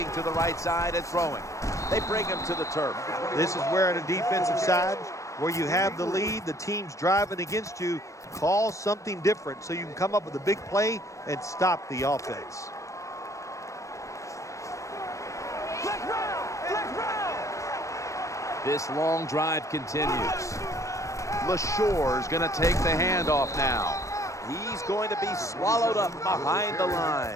to the right side and throwing. They bring him to the turf. This is where on the defensive side, where you have the lead, the team's driving against you, call something different so you can come up with a big play and stop the offense. This long drive continues. LaShore's going to take the handoff now. He's going to be swallowed up behind the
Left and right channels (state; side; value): late; right; 0.15 ms